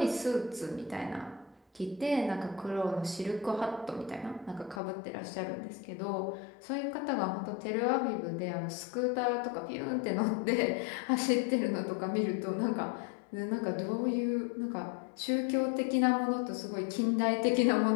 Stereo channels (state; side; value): drops out; right; at 4.8 s